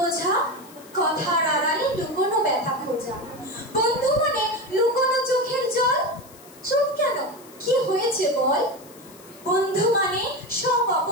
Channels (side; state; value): left; noise; hiss, 22 dB below the sound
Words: কথার আড়ালে লুকোনো ব্যথা খোঁজা। বন্ধু মানে লুকোনো চোখের জল, চুপ কেন, কি হয়েছে বল। বন্ধু মানে সব